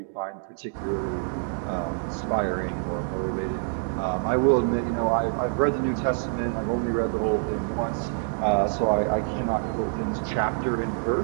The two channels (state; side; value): silent; left; 61 dB below the other